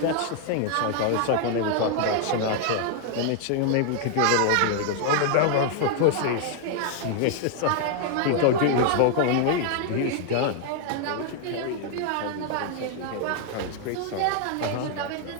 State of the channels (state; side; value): different; both; correlation 0.00